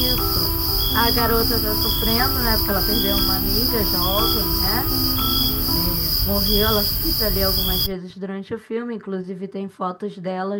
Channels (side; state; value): both; identical; correlation 1.00